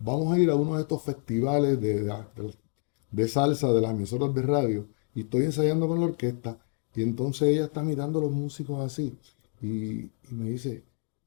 a ir a uno de estos festivales de salsa de las emisoras de radio y estoy ensayando con la orquesta y entonces ella está mirando a los músicos así y me dice,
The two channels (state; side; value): quieter; right; 35.5 dB